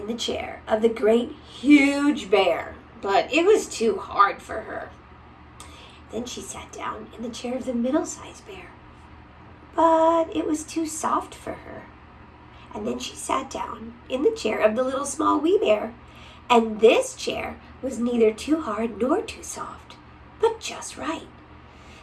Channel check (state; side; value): identical; both; correlation 1.00